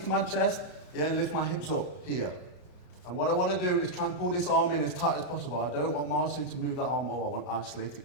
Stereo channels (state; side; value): late; right; 33 ms